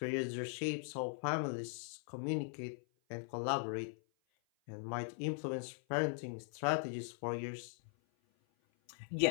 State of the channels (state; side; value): silent; right; 51 dB below the other